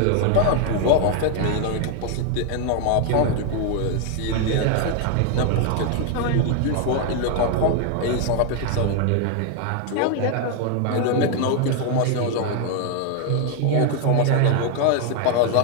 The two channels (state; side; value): different; both; correlation 0.00